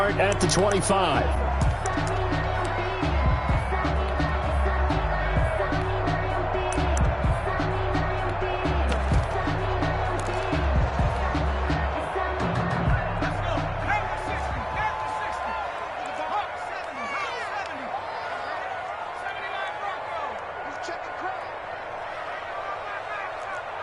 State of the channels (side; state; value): both; identical; correlation 1.00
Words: at the 25.